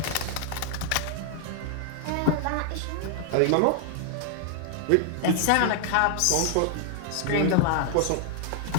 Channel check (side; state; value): both; different; correlation 0.00